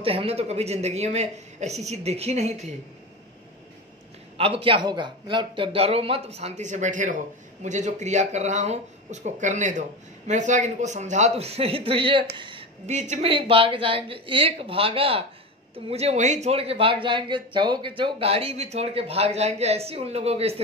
हैं, हमने तो कभी जिंदगी में ऐसी चीज देखी नहीं थी। अब क्या होगा, मतलब डरो मत, शांति से बैठे रहो। मुझे जो क्रिया कर रहा हूँ उसको करने दो। मैं सोचा कि इनको समझा तो सही, तो ये बीच में ही भाग जाएंगे। एक भागा तो मुझे वहीं छोड़ के भाग जाएंगे, चौक गाड़ी भी छोड़ के भाग जाएंगे, ऐसी उन लोगों की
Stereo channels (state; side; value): normal; both; correlation 0.24